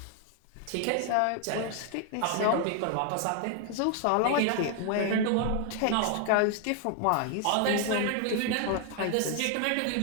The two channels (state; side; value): different; both; correlation 0.00